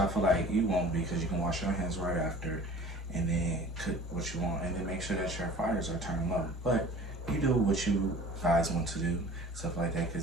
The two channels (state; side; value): normal; both; correlation 0.45